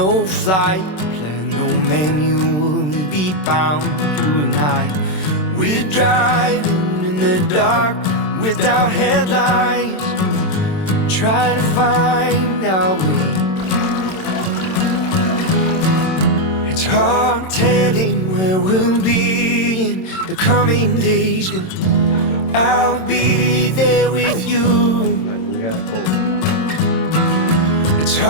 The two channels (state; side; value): late; right; 27 ms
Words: flight plan, no manual to be bound. You and I, we're driving in the dark without headlights, trying to find our way. It's hard telling where we'll be in the coming days, but I'll be there with you. It's